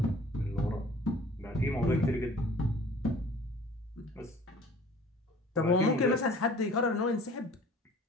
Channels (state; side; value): normal; both; correlation 0.49